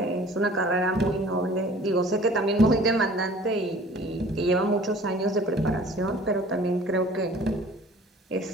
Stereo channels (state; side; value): normal; both; correlation 0.49